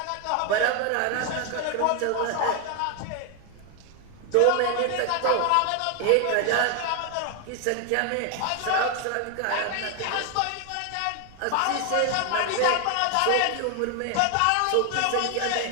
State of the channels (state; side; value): different; both; correlation 0.01